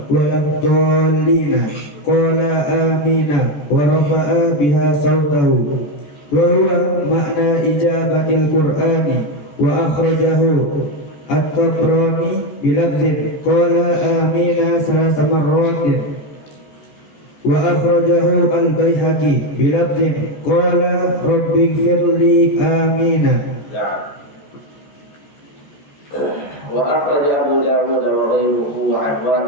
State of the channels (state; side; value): late; right; 14 ms